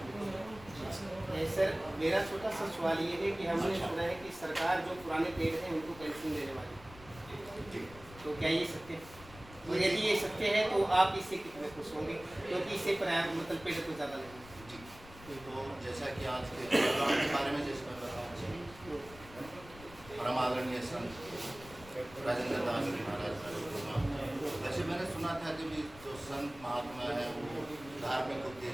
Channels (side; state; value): left; noise; rumble, 19 dB below the sound